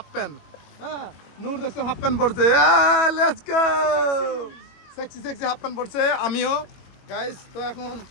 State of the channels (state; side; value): late; right; 21 ms